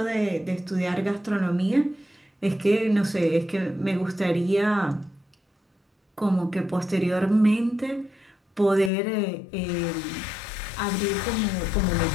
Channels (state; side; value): drops out; right; at 8.9 s